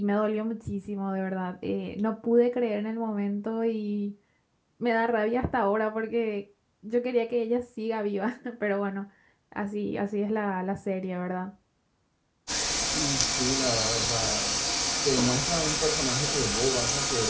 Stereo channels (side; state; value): both; identical; correlation 1.00